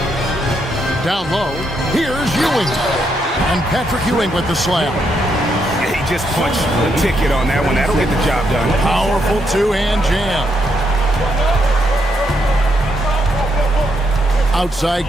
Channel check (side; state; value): both; normal; correlation 0.78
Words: Down low, here's Ewing. And Patrick Ewing with the slam. He just punched the ticket on that one. That'll get the job done. Powerful two-hand jam. Outside